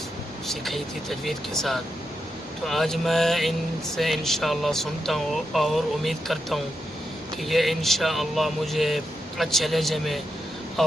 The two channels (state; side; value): normal; both; correlation 0.85